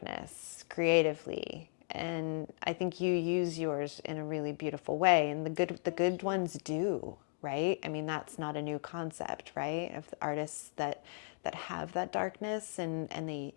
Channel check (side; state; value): right; silent; digital silence